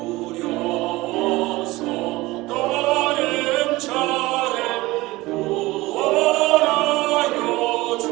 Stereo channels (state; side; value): quieter; left; 20.0 dB